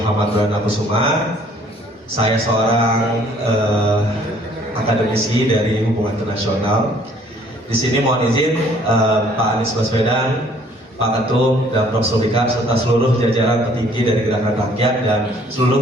Perdana Kusuma. Saya seorang akademisi dari Hubungan Internasional. Di sini mohon izin Pak Anies Baswedan, Pak Ketum, dan Prof. Sulfikar serta seluruh jajaran petinggi dari Gerakan Rakyat dan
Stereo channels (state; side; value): normal; both; correlation 0.59